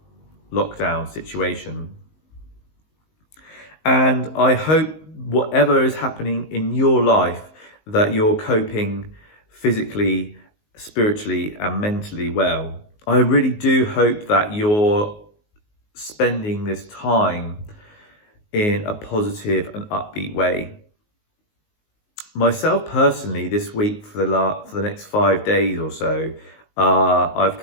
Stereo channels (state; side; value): late; right; 19 ms